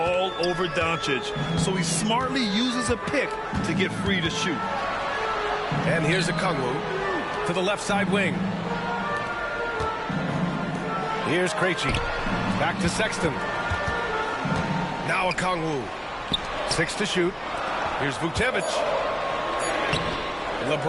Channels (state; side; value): identical; both; correlation 1.00